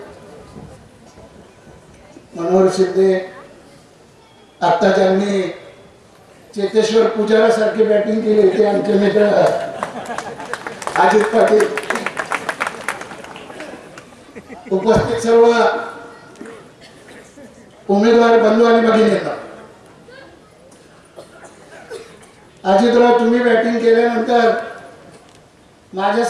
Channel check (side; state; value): both; identical; correlation 1.00